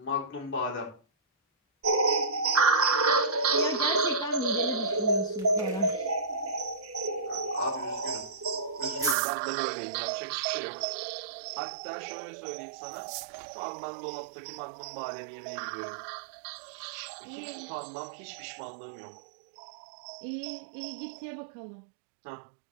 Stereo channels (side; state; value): left; drops out; at 9.2 s